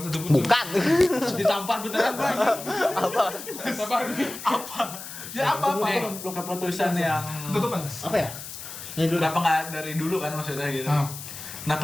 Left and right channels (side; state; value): left; noise; hiss, 11 dB below the sound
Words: satupun? Bukan. Ditampar beneran gue. Sabar. Ya apa? Lu keputusan yang Tutupan. Apa ya? Ini dulu. kenapa nggak dari dulu kan maksudnya gitu? Ah.